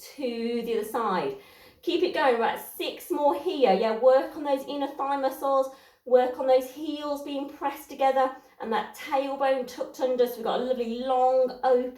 to the other side. Keep it going. We're at 6 more here. Yeah, work on those inner thigh muscles, work on those heels being pressed together and that tailbone tucked under, so we've got a lovely long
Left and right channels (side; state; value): both; identical; correlation 1.00